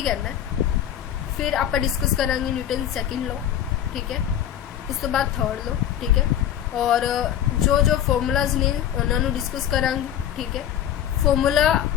कहना है, फिर आप डिस्कस करांगे न्यूटन सेकंड लॉ। ठीक है। उस तो बाद थर्ड लॉ। ठीक है। और जो जो फॉर्मूलाज ने उन्होंने डिस्कस करांगे। ठीक है। फॉर्मूला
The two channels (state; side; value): quieter; right; 10.4 dB